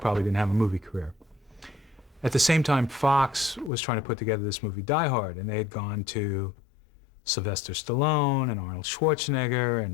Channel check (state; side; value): drops out; right; at 3.7 s